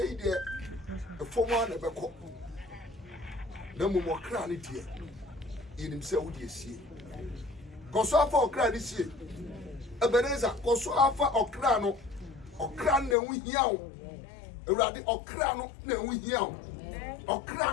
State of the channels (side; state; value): right; drops out; at 13.2 s